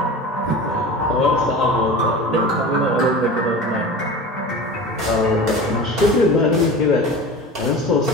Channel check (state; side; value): normal; both; correlation 0.34